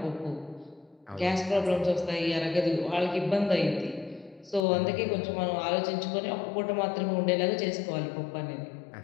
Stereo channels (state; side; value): drops out; right; at 4.7 s